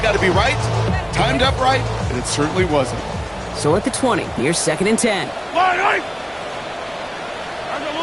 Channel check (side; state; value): both; identical; correlation 1.00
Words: to be right, timed up right, and it certainly wasn't. So at the 20, here's second and 10.